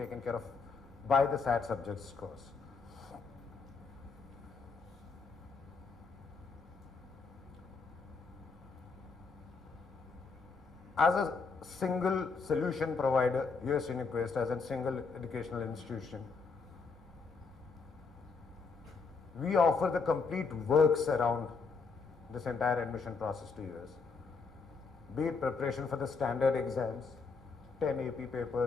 care of by the SAT subject scores. As a single solution provider, US UnivQuest as a single educational institution, we offer the complete works around this entire admission process to US. Be it preparation for the standard exams, 10 AP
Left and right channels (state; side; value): quieter; right; 4.8 dB